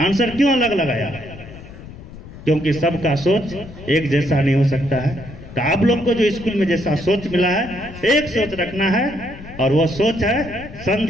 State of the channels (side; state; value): left; noise; rumble, 15 dB below the sound